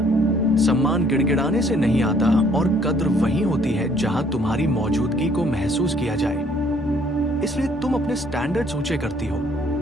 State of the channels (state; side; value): normal; both; correlation 0.62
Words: सम्मान गिड़गिड़ाने से नहीं आता, और कद्र वही होती है जहां तुम्हारी मौजूदगी को महसूस किया जाए। इसलिए तुम अपने स्टैंडर्ड्स ऊंचे करती हो,